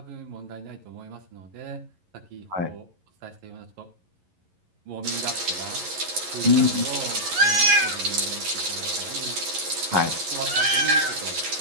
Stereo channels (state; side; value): late; left; 11 ms